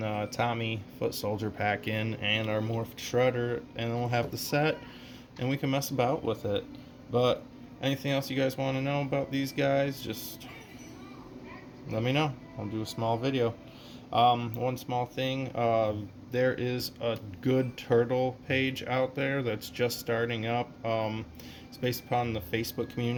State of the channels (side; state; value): both; identical; correlation 1.00